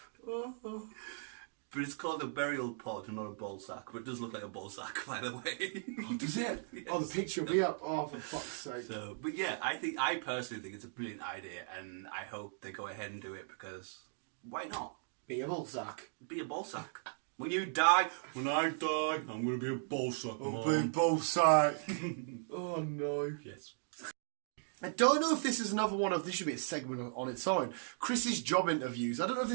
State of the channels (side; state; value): left; silent; digital silence